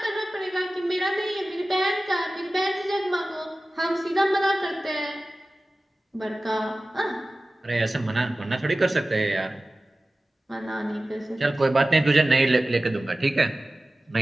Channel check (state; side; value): normal; both; correlation 0.96